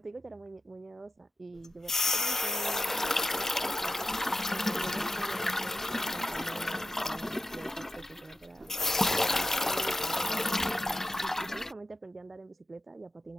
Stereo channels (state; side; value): normal; both; correlation 0.92